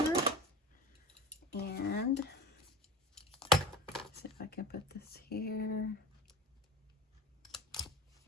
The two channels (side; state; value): both; normal; correlation 0.33